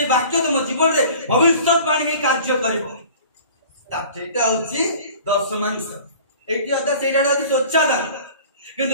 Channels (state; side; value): inverted; both; correlation -0.45